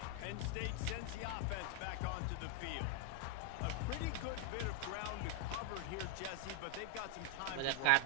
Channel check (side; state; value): both; different; correlation 0.00